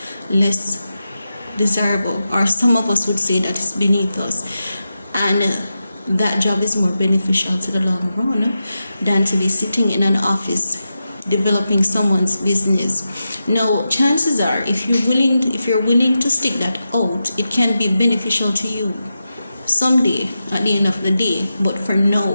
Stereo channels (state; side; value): inverted; both; correlation -0.90